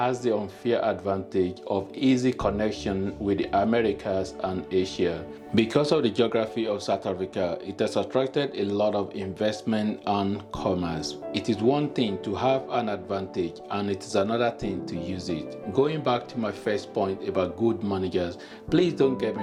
the unfair advantage of easy connection with the Americas and Asia. Because of the geography of South Africa, it has attracted a lot of investment and commerce. It is one thing to have an advantage and it is another thing to use it. Going back to my first point about good managers, please don't get me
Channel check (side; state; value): both; identical; correlation 1.00